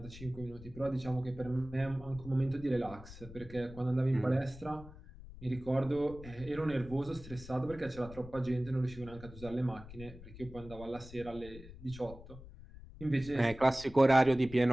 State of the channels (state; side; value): noise; left; rumble, 16 dB below the sound